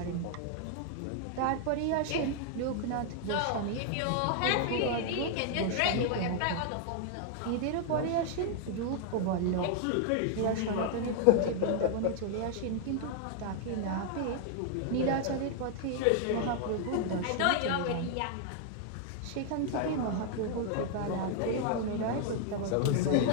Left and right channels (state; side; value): different; both; correlation 0.00